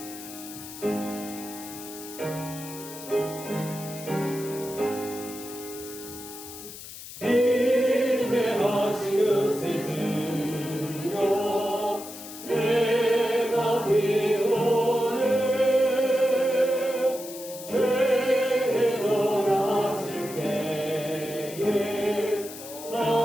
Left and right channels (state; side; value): noise; left; hiss, 13 dB below the sound